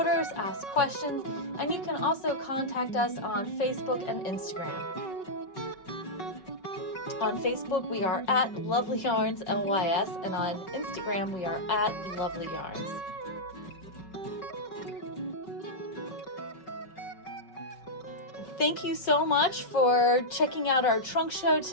ask questions, and you can also contact us on Facebook and Instagram. On Facebook, we are at Lovelyarns LYS, and on Instagram, we are at Lovelyarns. Thank you so much for checking out our trunk show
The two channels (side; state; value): right; late; 5.3 ms